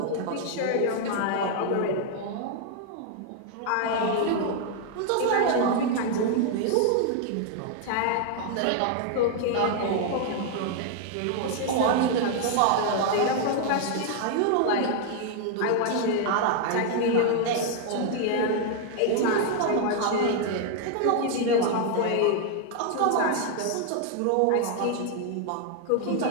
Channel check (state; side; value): different; both; correlation 0.00